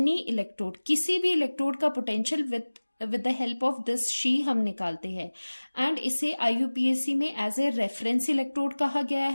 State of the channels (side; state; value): both; inverted; correlation -1.00